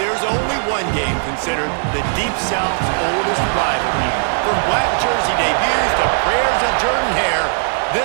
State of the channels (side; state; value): left; silent; digital silence